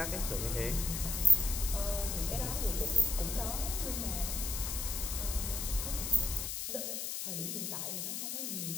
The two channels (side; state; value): left; noise; hiss, 3 dB below the sound